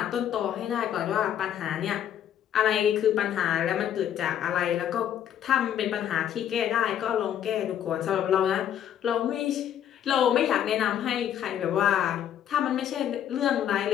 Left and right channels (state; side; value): quieter; right; 10.1 dB